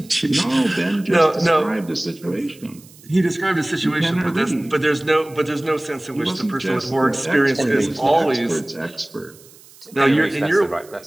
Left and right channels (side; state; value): right; noise; hiss, 24 dB below the sound